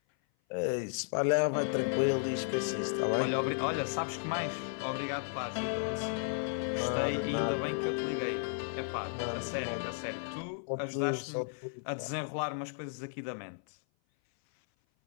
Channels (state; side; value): silent; right; 55 dB below the other